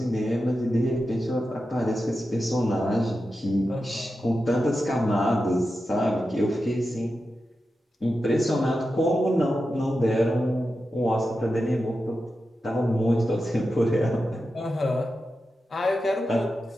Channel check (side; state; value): both; normal; correlation 0.90